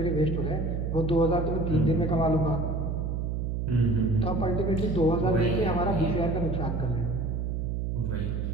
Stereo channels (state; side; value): noise; right; hum, 1 dB below the sound